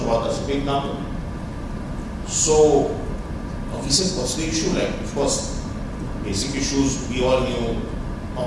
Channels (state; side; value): identical; both; correlation 1.00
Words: workers, a big number. So we said, what's the issue? Like, of course, basic issues, we all knew,